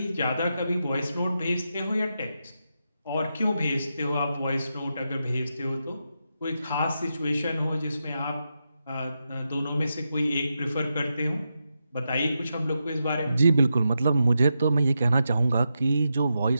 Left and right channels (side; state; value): both; inverted; correlation -0.86